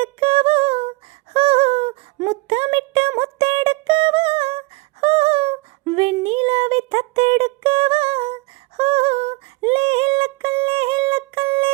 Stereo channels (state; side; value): quieter; left; 25.3 dB